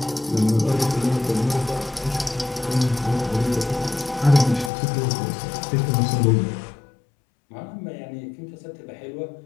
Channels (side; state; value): right; drops out; at 4.7 s